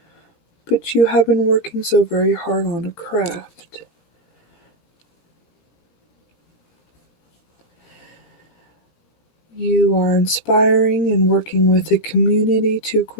but you have been working so very hard on a craft. You are inspiring and working with a community to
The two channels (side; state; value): right; late; 13 ms